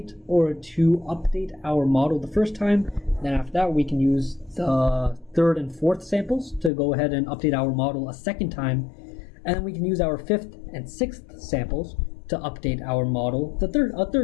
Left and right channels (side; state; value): right; drops out; at 6.7 s